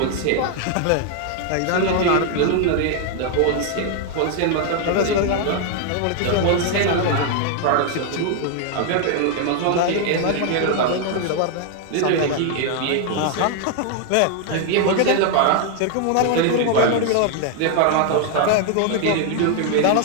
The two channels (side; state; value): both; different; correlation 0.00